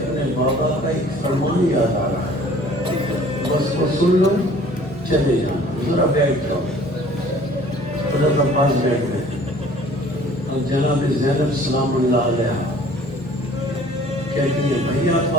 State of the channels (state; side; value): normal; both; correlation 0.52